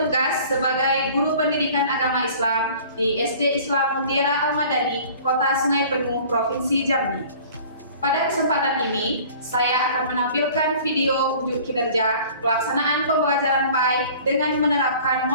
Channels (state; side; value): inverted; both; correlation -0.47